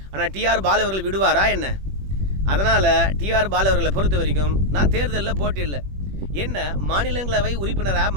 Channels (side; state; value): left; late; 21 ms